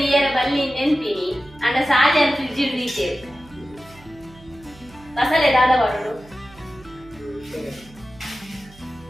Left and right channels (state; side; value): noise; right; hum, 23 dB below the sound